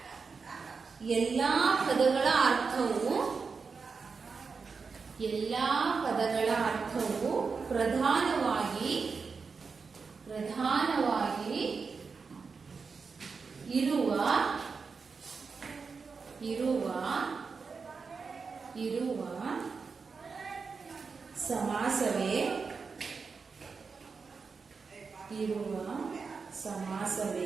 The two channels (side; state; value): left; quieter; 5.0 dB